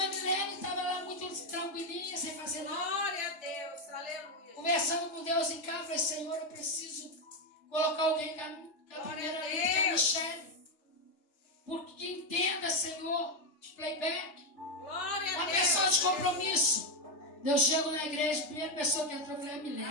Milene estava lá muito tranquilinha, sem fazer nada. Glória a Deus. Aleluia. Conversando com Deus em casa, falei, Senhor, eu preciso colocar alguém com a primeira lista, que é a Michelle. Porque entenda, Senhor, de playback. Glória a Uma Deus. pessoa de compromisso. Eu chego na igreja, a primeira pessoa que entrou foi a Milene.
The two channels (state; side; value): late; right; 3.3 ms